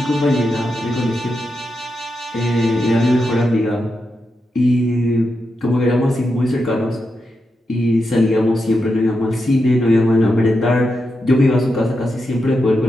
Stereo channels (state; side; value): normal; both; correlation 0.87